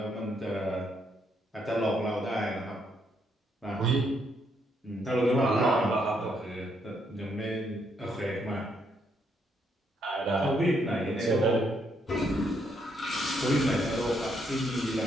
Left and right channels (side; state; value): both; normal; correlation 0.74